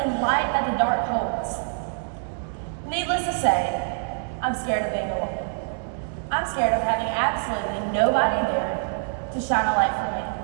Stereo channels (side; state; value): left; silent; digital silence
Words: light that the dark holds. Needless to say, I'm scared of being alone. I'm scared of having absolutely nobody there to shine a light for me.